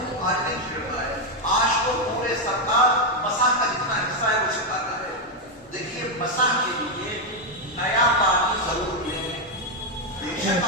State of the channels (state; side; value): normal; both; correlation 0.03